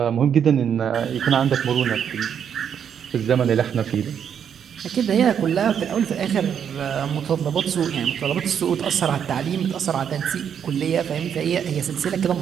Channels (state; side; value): quieter; left; 8.2 dB